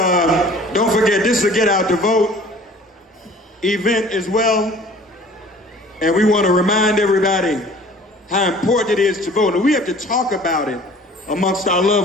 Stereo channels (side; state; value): both; normal; correlation 0.49